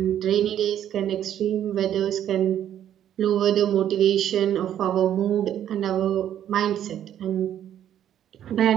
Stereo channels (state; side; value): quieter; left; 10.6 dB